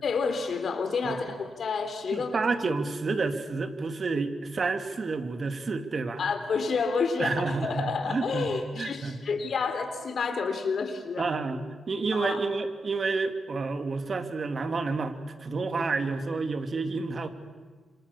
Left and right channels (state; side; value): normal; both; correlation 0.83